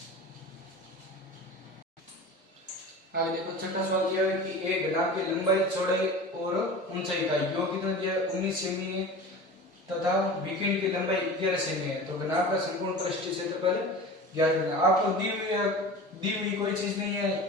आगे देखो छठा सवाल दिया है कि एक घनाभ की लंबाई चौड़ाई और ऊंचाई का योग कितना दिया है 19 सेमी है तथा विकिरण की लंबाई 11 सेमी है तो घनाभ का संपूर्ण पृष्ठीय क्षेत्रफल ज्ञात करना। आपको दी हुई कोई चीज नहीं है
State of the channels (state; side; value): normal; both; correlation 0.35